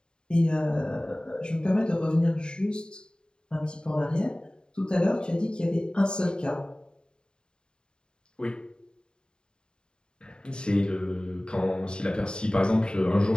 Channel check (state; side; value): late; right; 0.049 ms